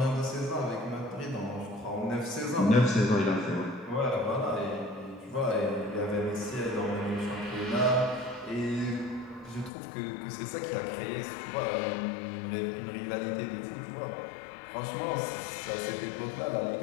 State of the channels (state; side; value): drops out; right; at 9.7 s